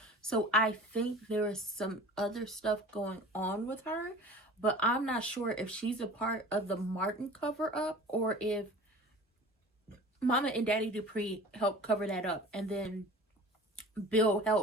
So I think there is some other stuff going on with her, but I'm not sure if she's a part of the Martin cover up or if Mama and Daddy Dupree helped cover that up and then Bill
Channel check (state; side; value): normal; both; correlation 0.41